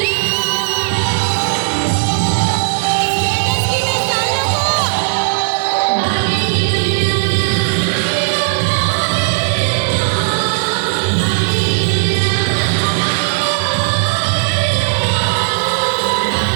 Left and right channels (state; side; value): silent; left; digital silence